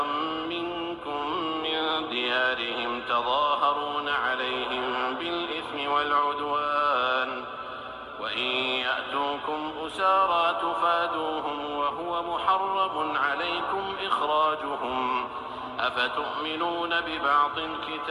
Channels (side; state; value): both; identical; correlation 1.00